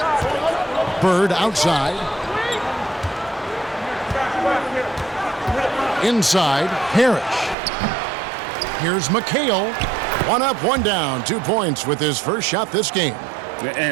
Bird outside. Inside, Parrish. Here's McHale. One up, one down. 2 points with his first shot this game.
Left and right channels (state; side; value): drops out; left; at 7.6 s